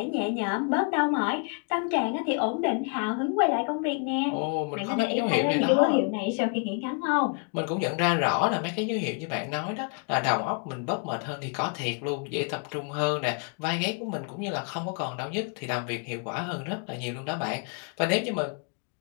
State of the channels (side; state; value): right; quieter; 39.5 dB